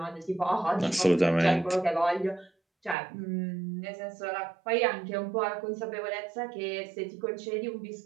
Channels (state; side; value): drops out; left; at 3.0 s